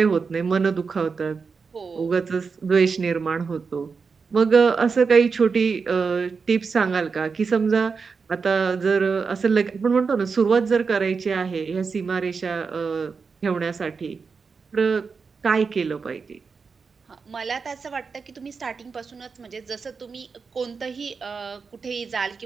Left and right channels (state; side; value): quieter; left; 5.1 dB